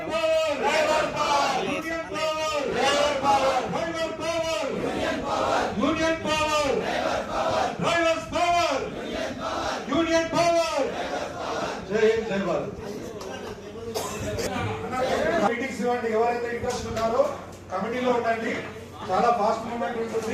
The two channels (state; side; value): identical; both; correlation 1.00